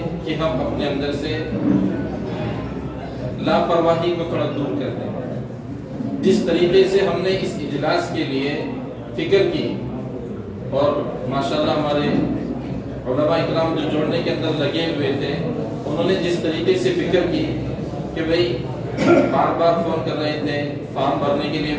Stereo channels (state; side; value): identical; both; correlation 1.00